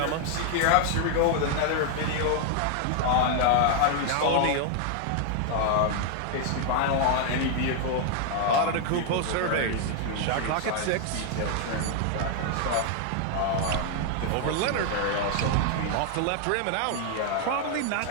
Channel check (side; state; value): both; different; correlation 0.00